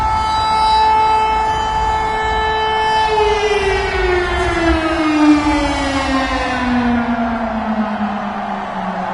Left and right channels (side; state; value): both; identical; correlation 1.00